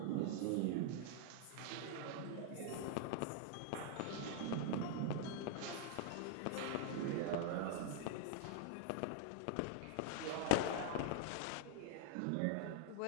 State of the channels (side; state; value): both; different; correlation 0.00